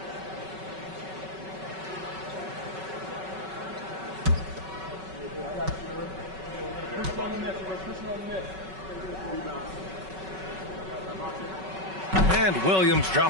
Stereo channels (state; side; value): late; left; 5.3 ms